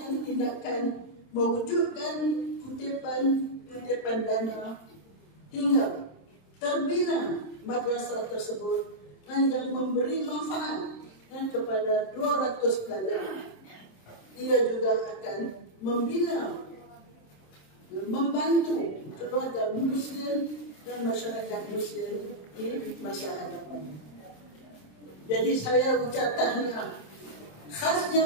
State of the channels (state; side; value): late; right; 26 ms